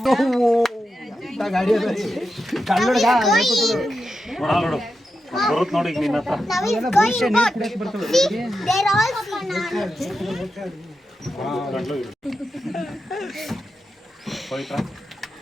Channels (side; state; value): both; normal; correlation 0.89